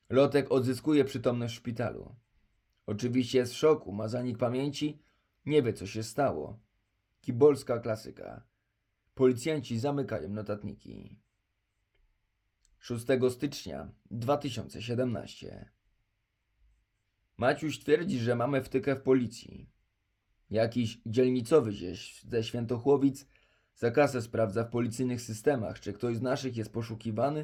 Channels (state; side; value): identical; both; correlation 1.00